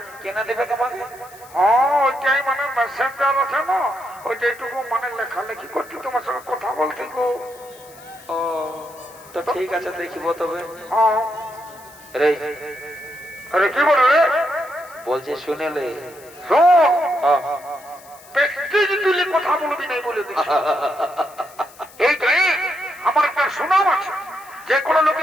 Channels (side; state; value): left; noise; hiss, 23 dB below the sound